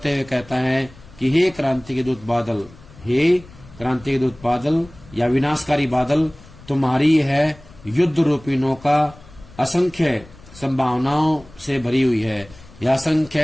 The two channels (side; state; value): left; noise; rumble, 22 dB below the sound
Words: हुए कहता है कि हे क्रांति के दूत बादल, हे क्रांति के दूत बादल या विनाशकारी बादल, तुम्हारी है युद्ध रूपी नौका असंख्य संभावनाओं से भरी हुई है या